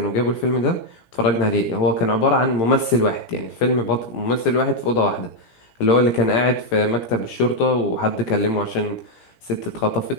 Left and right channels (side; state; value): right; late; 17 ms